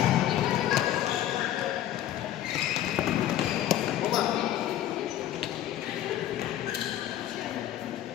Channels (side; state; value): right; quieter; 12.4 dB